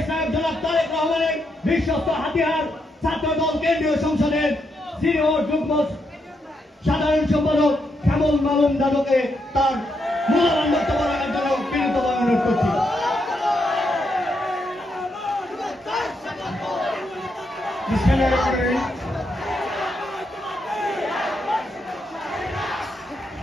জনাব তারেক রহমানের বিশ্বস্ত হাতিয়ার ছাত্র দল কেন্দ্রীয় সংসদের সিনিয়র যুগ্ম সাধারণ সম্পাদক শ্যামল মালুম দাদুকে তার মূল্যবান বক্তব্য রাখার জন্য বিনীতভাবে অনুরোধ করছি।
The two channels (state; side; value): normal; both; correlation 0.80